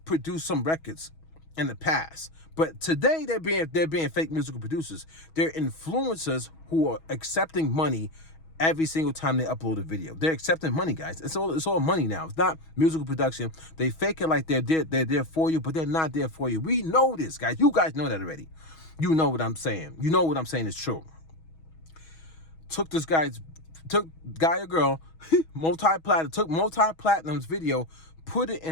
produced some records in the past, but today they're being fake musical producers. They're influencers who are accepting money every single time they upload a video. They're accepting money, guys. It's all money now. It's not musical production. They fake it like they're there for you, but they're not there for you. We know this, guys. You guys know that already. You know what I'm saying. You know what I'm saying is true. Took guy or girl, took multi-platinum's video, put it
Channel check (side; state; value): right; late; 6.2 ms